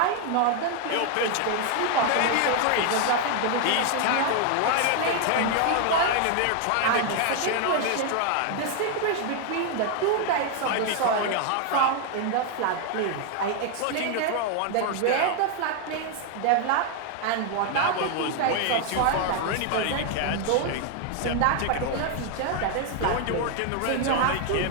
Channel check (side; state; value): both; different; correlation 0.00